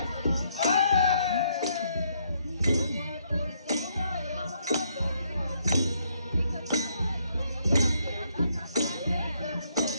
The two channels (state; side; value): inverted; both; correlation -0.72